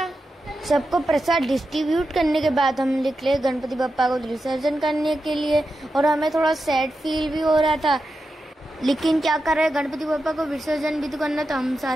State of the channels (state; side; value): normal; both; correlation 0.89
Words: सबको प्रसाद डिस्ट्रीब्यूट करने के बाद हम निकले गणपति बप्पा को विसर्जन करने के लिए। और हमें थोड़ा सैड फील भी हो रहा था, लेकिन क्या कर रहे, गणपति बप्पा को विसर्जन भी तो करना, तो हम